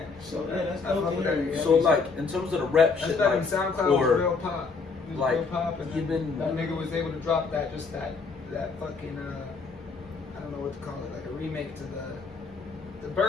So yeah, that's I fuck dope. with to that hear. nigga. So like in terms of the rap That's shit, that like, in SoundCloud was real pop. It was like, real pop, and even- that nigga was able to drop that fucking I don't know what to call it, like a remake to the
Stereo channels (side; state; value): right; quieter; 4.6 dB